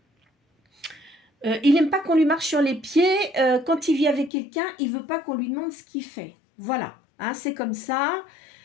Il n'aime pas qu'on lui marche sur les pieds. Quand il vit avec quelqu'un, il veut pas qu'on lui demande ce qu'il fait. Voilà, hein, c'est comme ça.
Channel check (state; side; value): drops out; right; at 4.3 s